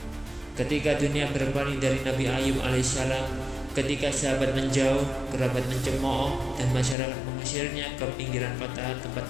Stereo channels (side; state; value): right; drops out; at 7.0 s